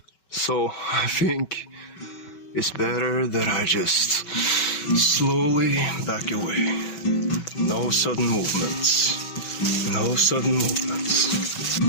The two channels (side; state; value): right; late; 5.2 ms